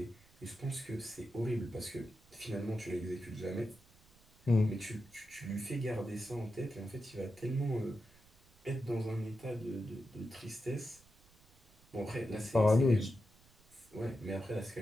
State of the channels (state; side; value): noise; right; rumble, 28 dB below the sound